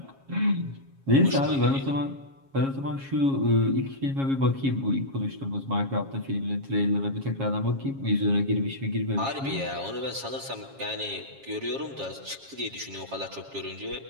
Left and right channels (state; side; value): late; left; 7.3 ms